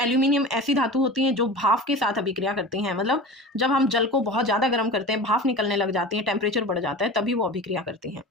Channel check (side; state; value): both; normal; correlation 0.33